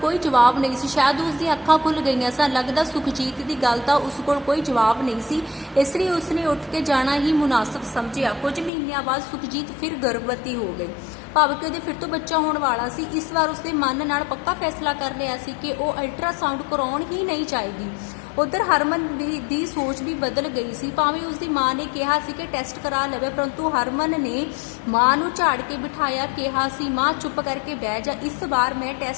ਕੋਈ ਜਵਾਬ ਨਹੀਂ ਸੀ। ਸ਼ਾਇਦ ਉਸ ਦੀਆਂ ਅੱਖਾਂ ਖੁੱਲ੍ਹ ਗਈਆਂ ਸਨ। ਲੱਗਦਾ ਸੁਖਜੀਤ ਦੀ ਗੱਲ ਦਾ ਉਸ ਕੋਲ ਕੋਈ ਜਵਾਬ ਨਹੀਂ ਸੀ, ਇਸ ਲਈ ਉਸਨੇ ਉੱਠ ਕੇ ਜਾਣਾ ਹੀ ਮੁਨਾਸਬ ਸਮਝਿਆ। ਕੁਝ ਮਹੀਨਿਆਂ ਬਾਅਦ ਸੁਖਜੀਤ ਫਿਰ ਗਰਭਵਤੀ ਹੋ ਗਈ, ਭਾਵ ਕਿ ਉਹਦੇ ਫਿਰ ਤੋਂ ਬੱਚਾ ਹੋਣ ਵਾਲਾ ਸੀ। ਇਸ ਵਾਰ ਉਸਦੇ ਮਨ ਨਾਲ ਪੱਕਾ ਫੈਸਲਾ ਕਰ ਲਿਆ ਸੀ ਕਿ ਉਹ ਅਲਟਰਾਸਾਊਂਡ ਕਰਾਉਣ ਹੀ ਨਹੀਂ ਚਾਹੇਗੀ। ਉਧਰ ਹਰਮਨ ਦੀ ਸੋਚ ਵੀ ਬਦਲ ਗਈ ਸੀ। ਭਾਵੇਂ ਉਸਦੀ ਮਾਂ ਨੇ ਕਿਹਾ ਸੀ ਕਿ ਟੈਸਟ ਕਰਾ ਲਵੇ, ਪਰੰਤੂ ਹਰਮਨ ਨੇ ਮਾਂ ਨੂੰ ਝਾੜ ਕੇ ਬਿਠਾਇਆ, ਕਿਹਾ ਸੀ, ਮਾਂ ਚੁੱਪ ਕਰਕੇ ਬਹਿ ਜਾ, ਇਸ ਵਾਰ ਮੈਂ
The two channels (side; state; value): right; drops out; at 8.7 s